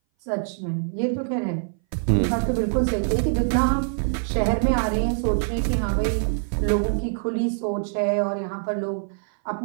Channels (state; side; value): silent; left; 59 dB below the other